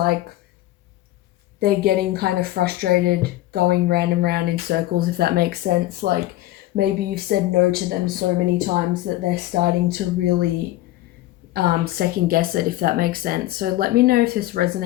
they're getting kind of frustrated going round and round in circles, if that makes sense. Like maybe you've said no to them so many times that they're starting to really second guess it, if that makes sense. So let me know if this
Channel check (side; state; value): right; quieter; 15.9 dB